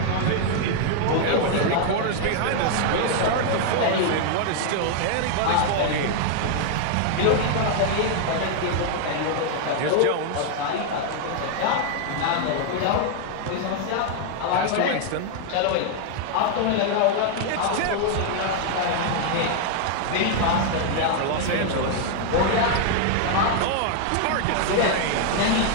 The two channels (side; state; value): both; different; correlation 0.00